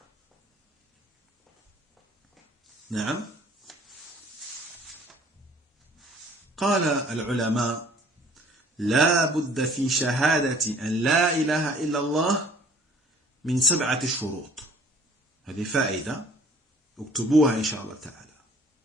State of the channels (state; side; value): normal; both; correlation 0.54